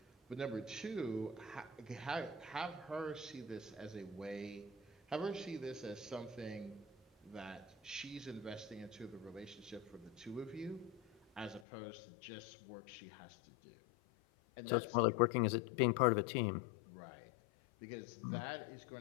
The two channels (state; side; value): drops out; right; at 11.7 s